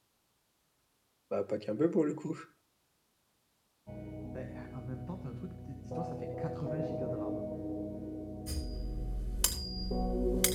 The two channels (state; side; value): identical; both; correlation 1.00